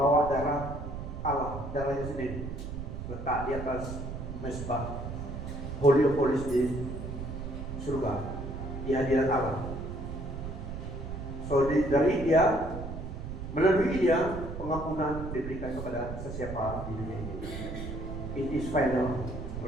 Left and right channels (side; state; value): right; noise; rumble, 7 dB below the sound